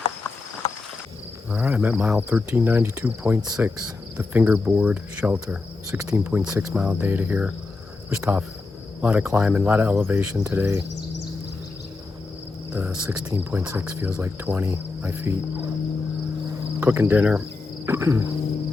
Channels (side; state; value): right; quieter; 3.7 dB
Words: All right, I'm at mile 1392.6, the Fingerboard shelter. 16.6 mile data here. It was tough. A lot of climbing, a lot of elevation today. The 16.6 feels like 20, my feet. Cooking dinner.